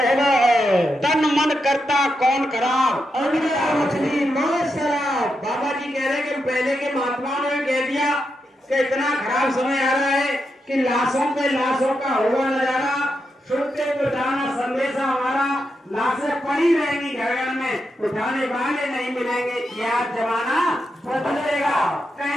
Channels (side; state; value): both; normal; correlation 0.85